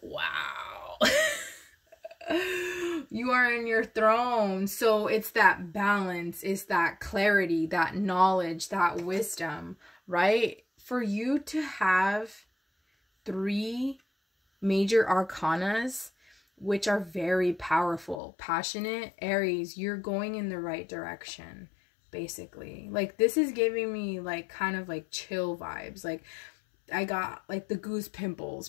You are in your throne. So it's that balance, it's that clarity, that knowledge, that wisdom, right? For you to have 3 major arcanas, which are very powerful, passionate, Aries, you're going in the right direction, basically. Like, this is giving me like kind of like chill vibes. Like, I got like the goose pimples,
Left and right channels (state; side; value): drops out; right; at 18.2 s